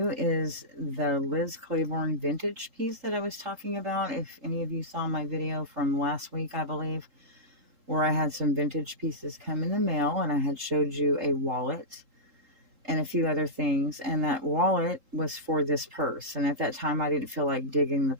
is the Liz Claiborne vintage piece that I was talking about. If any of you saw my video from last week, I believe, where I had some vintage pieces come in the mail, and I had showed you a wallet and a few other things, and that wallet was for this purse. And at that time, I didn't feel like digging the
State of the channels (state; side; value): late; left; 3.8 ms